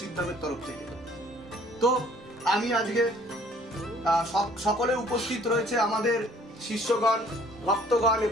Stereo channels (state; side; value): normal; both; correlation 0.57